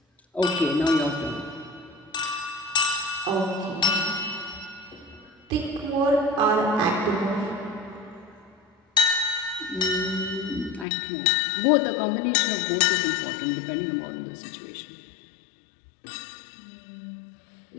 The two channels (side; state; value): right; drops out; at 10.9 s